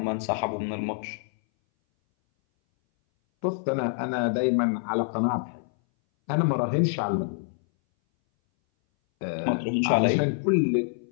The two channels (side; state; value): right; silent; 59 dB below the other